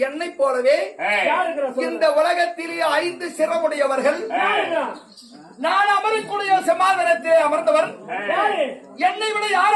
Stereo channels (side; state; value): both; identical; correlation 1.00